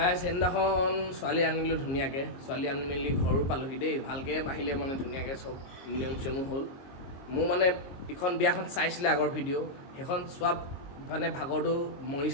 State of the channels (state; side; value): late; right; 22 ms